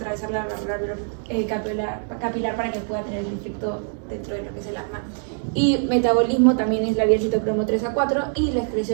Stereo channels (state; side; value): silent; left; 60 dB below the other